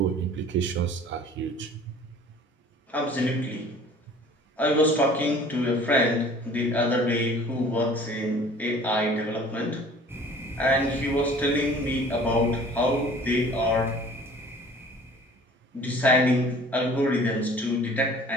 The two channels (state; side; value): normal; both; correlation 0.49